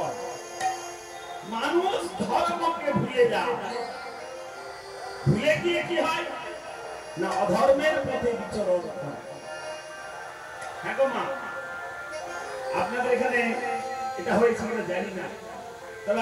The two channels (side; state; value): both; identical; correlation 1.00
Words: মানুষ ধর্মকে ভুলে যায় ভুলে গিয়ে কি হয় না অধর্মের পথে বিচরণ করে হ্যাঁ গো মা আপনাদের এখানে এটা হয়েছে কিনা জানি না তবে